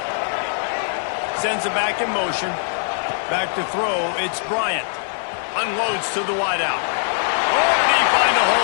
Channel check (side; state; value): right; silent; 65 dB below the other